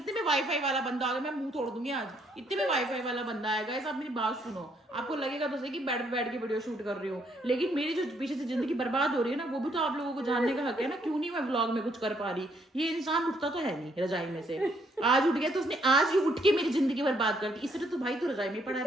में वाईफाई वाला बंदा आ गया, मैं मुंह तोड़ दूंगी आज। इतने में वाईफाई वाला बंदा आएगा। आप मेरी बात सुनो, आपको लगेगा तो सही कि बेड पे बैठ के वीडियो शूट कर रही हूँ, लेकिन मेरी जो पीछे से जिंदगी बर्बाद हो रही है ना, वो भी तो आप लोगों को जानने का हक है ना। क्यों नहीं मैं व्लॉग में कुछ कर पा रही। ये इंसान उठता तो है नहीं रजाई में से, आज उठ गया तो उसने आज ही उठ के मेरी जिंदगी बर्बाद कर दी। इसलिए तो भाई तो रजाई में पड़ा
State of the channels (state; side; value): normal; both; correlation 0.71